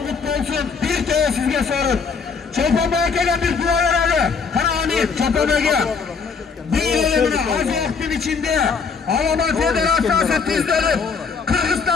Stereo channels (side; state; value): right; quieter; 5.4 dB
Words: kutlu olsun. Bir kere sizge sorun. Çolpan Mayakem'e bir dua herhalde. Kana amin. Çolpan Mayakem. Bir elemine az vaktin içinde Alman Federasyası tizleri